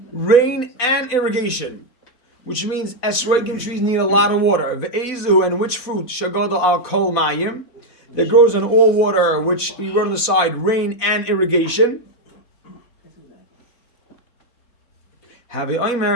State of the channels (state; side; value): late; right; 4.0 ms